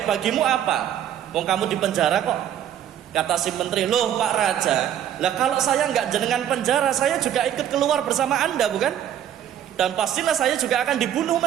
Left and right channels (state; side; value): quieter; left; 10.5 dB